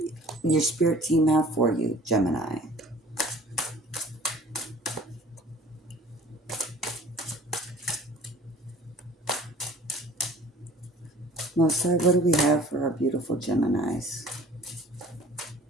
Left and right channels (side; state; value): both; normal; correlation 0.49